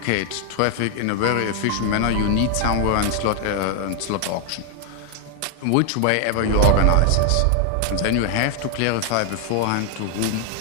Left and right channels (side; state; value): both; different; correlation 0.00